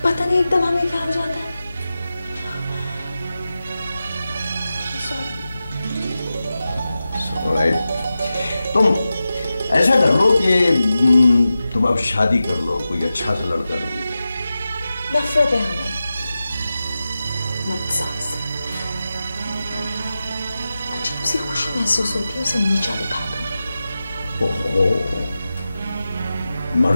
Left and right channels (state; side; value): inverted; both; correlation -0.93